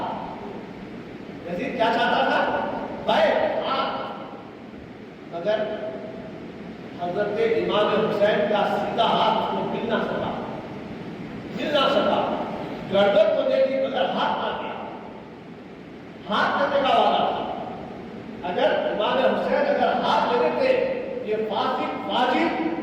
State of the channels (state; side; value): identical; both; correlation 1.00